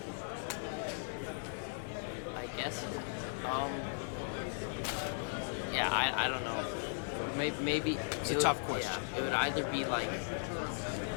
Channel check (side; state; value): right; silent; digital silence